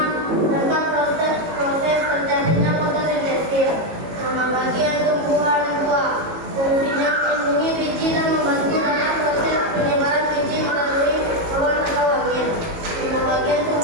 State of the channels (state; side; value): late; left; 18 ms